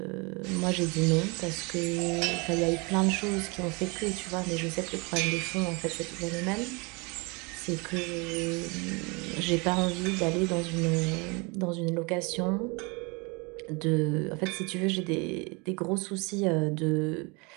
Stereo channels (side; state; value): left; quieter; 29.1 dB